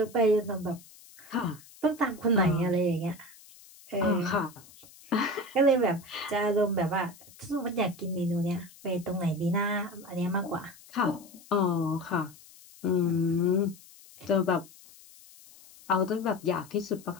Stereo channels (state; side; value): noise; left; hiss, 22 dB below the sound